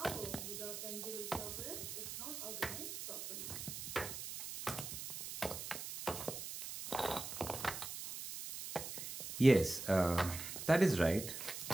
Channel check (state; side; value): noise; right; hiss, 7 dB below the sound